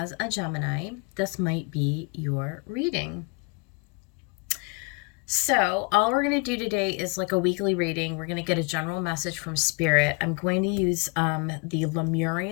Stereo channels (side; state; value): right; quieter; 31.0 dB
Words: a Gemini, this might be your reading. So all we're going to do today is like a weekly reading. We're going to get a general message from Spirit. I'm going to use the